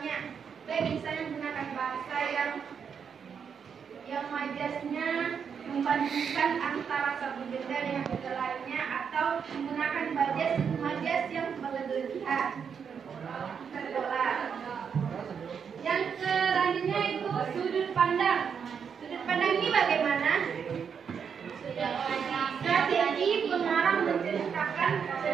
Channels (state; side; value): quieter; left; 6.9 dB